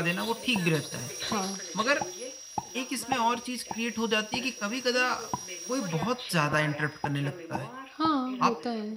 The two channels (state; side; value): identical; both; correlation 1.00